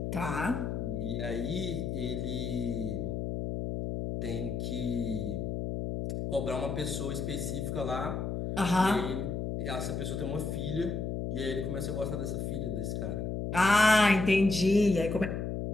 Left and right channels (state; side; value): noise; left; hum, 3 dB below the sound